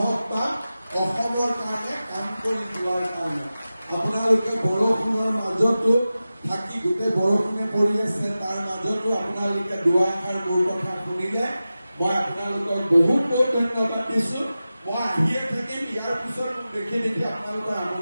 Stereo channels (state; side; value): inverted; both; correlation -0.94